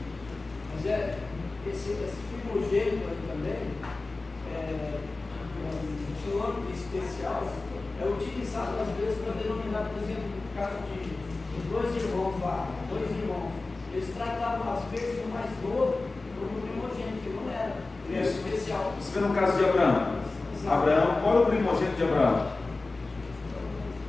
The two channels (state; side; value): quieter; right; 3.4 dB